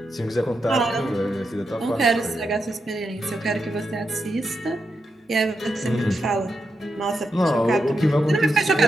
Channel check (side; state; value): both; normal; correlation 0.85